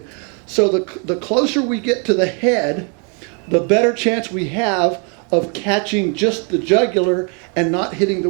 So the closer we get to the head, the better chance we have of catching just the jugular and not hitting the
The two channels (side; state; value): left; quieter; 37.2 dB